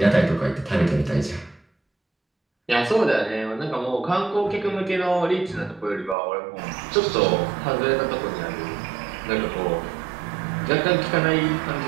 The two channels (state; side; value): drops out; left; at 6.2 s